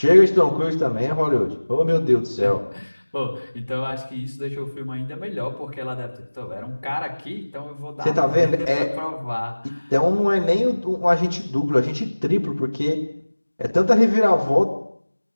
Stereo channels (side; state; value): both; inverted; correlation -1.00